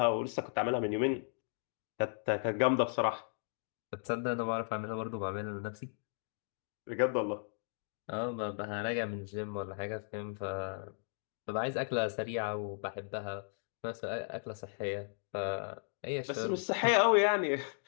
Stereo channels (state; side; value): silent; right; digital silence